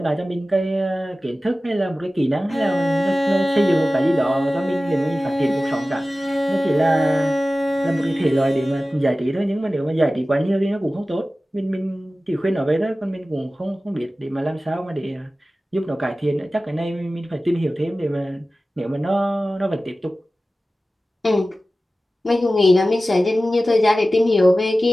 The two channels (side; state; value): both; normal; correlation 0.96